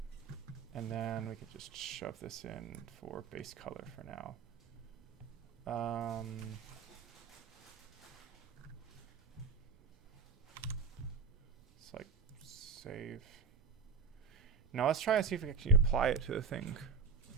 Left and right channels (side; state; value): left; quieter; 5.0 dB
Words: And then we could just shove this in for base color for now. It's like save. Now let's try and see if we can actually apply it to the thing.